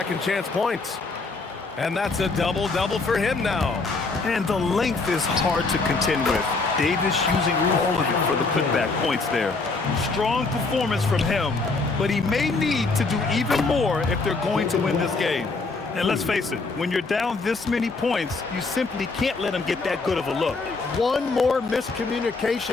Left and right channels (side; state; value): right; quieter; 3.9 dB